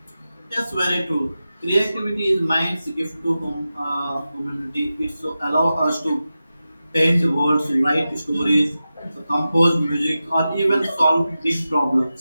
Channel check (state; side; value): inverted; both; correlation -0.93